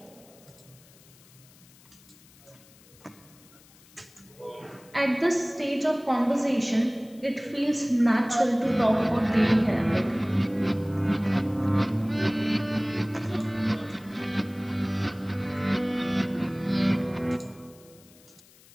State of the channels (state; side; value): noise; left; hiss, 26 dB below the sound